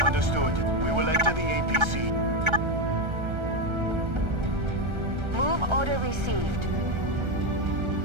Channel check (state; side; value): late; left; 1.3 ms